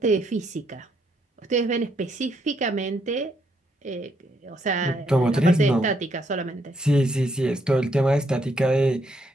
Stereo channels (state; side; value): normal; both; correlation 0.74